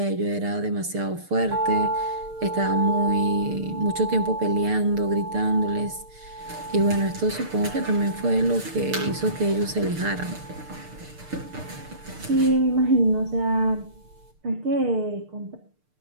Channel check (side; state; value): left; late; 6.6 ms